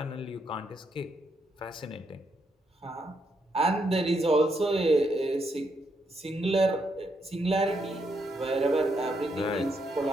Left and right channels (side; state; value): both; normal; correlation 0.78